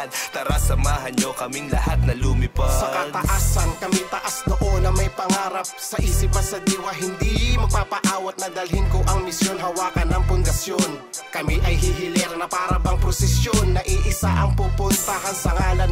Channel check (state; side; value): identical; both; correlation 1.00